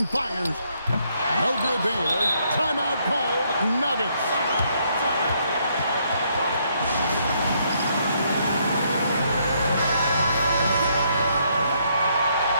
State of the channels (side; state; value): both; inverted; correlation -0.72